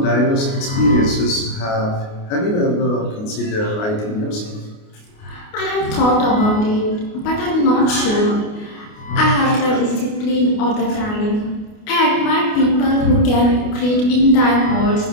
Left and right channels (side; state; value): right; late; 28 ms